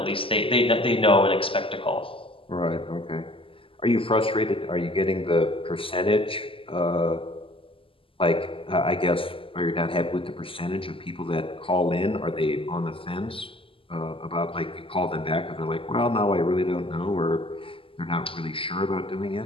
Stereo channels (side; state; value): right; late; 0.26 ms